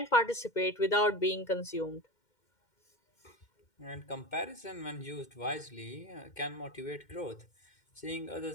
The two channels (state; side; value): late; right; 2.1 ms